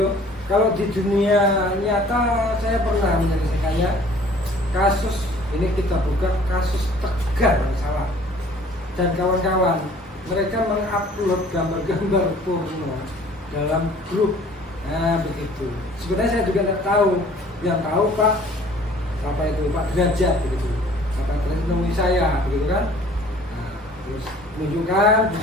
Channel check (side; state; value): both; normal; correlation 0.52